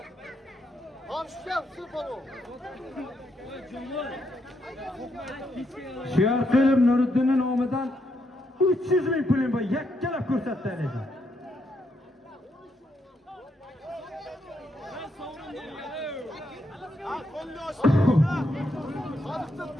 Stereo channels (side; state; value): both; normal; correlation 0.78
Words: Siyarqilib Nuriddinning nomidan 300 ming pulim bor. Yakkalab ko'rsatdi ekan.